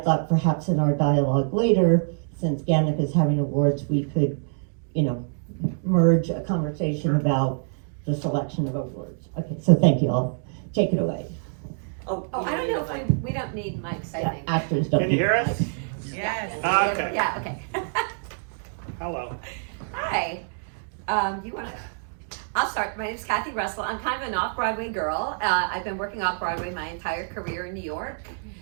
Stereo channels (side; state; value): left; silent; digital silence